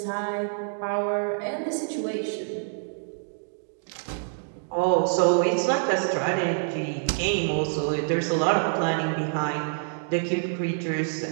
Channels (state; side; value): silent; left; digital silence